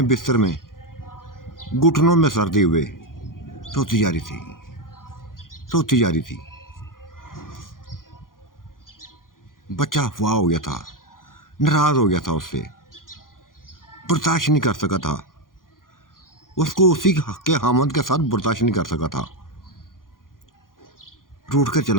बिस्तर में घुटनों में सर्दी हुए रोती जा रही थी, रोती जा रही थी। बच्चा अफवाह हो गया था, नाराज़ हो गया था, उससे बर्दाश्त नहीं कर सका था, उसको उसी के हामद के साथ बर्दाश्त नहीं कर सका था, रूठ कर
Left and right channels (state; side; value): late; right; 0.90 ms